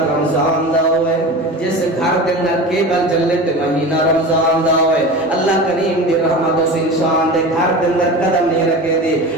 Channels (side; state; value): both; normal; correlation 0.31